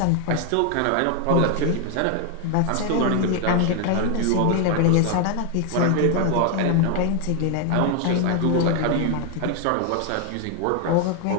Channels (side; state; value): both; different; correlation 0.00